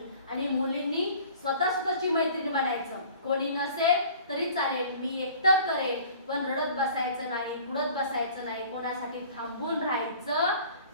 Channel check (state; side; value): inverted; both; correlation -0.48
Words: आणि मुलींनी स्वतःची मैत्रीण बनायचं. कोणी नसेल तरी चालेल, मी एकटं करेल, पण रडत बसायचं नाही, बुडत बसायचं नाही, कोणासाठी थांबून